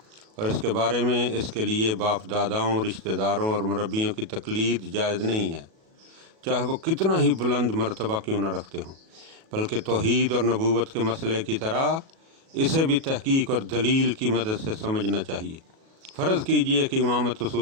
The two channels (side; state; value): left; late; 37 ms